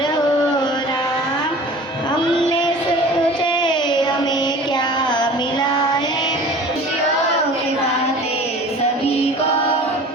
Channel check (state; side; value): normal; both; correlation 0.42